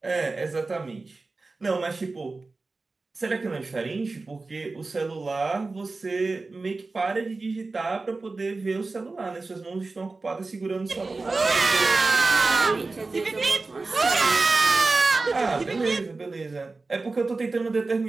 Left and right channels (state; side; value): quieter; left; 3.6 dB